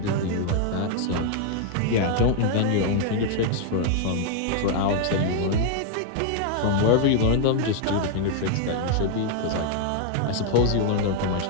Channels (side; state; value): both; different; correlation 0.00